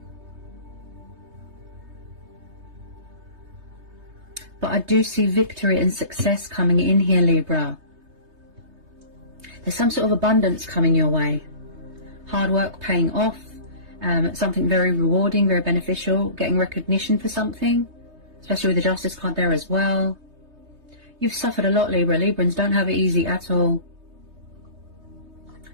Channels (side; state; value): left; late; 3.2 ms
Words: But I do see victory and success coming in here, Libra. There's some sort of abundance coming your way. Hard work paying off. Something very rewarding, very beneficial. Getting recognition for something. Especially with the Justice card there as well. You've suffered a lot, Libra. Librans don't have it easy at all.